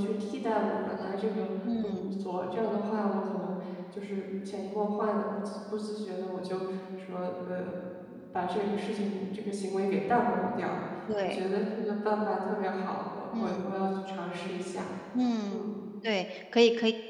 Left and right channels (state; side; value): identical; both; correlation 1.00